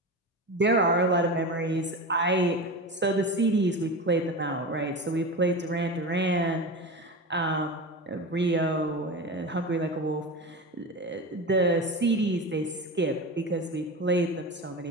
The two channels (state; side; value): normal; both; correlation 0.25